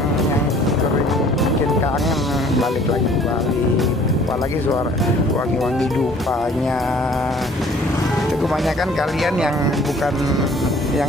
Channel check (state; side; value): normal; both; correlation 0.54